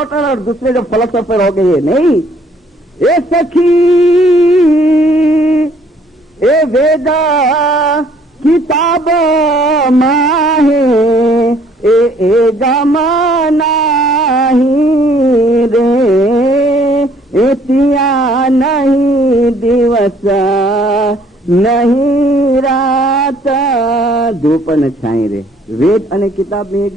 और दूसरे जो फिलोसफर हो गए नहीं। ए सखी ए वेदा किताब माहे ए गमना ही रे एतिया नहीं दिवस नहीं रात धूप न छाई रे। वेद अने किताब में ये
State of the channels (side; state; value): both; normal; correlation 0.61